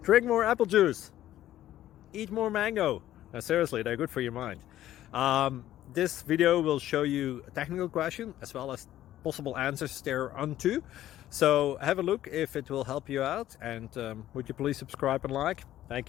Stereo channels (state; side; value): quieter; right; 13.2 dB